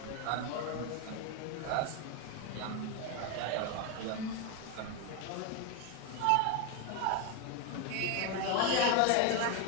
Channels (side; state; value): both; different; correlation 0.02